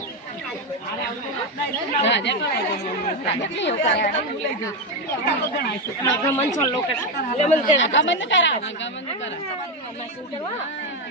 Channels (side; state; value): both; normal; correlation 0.09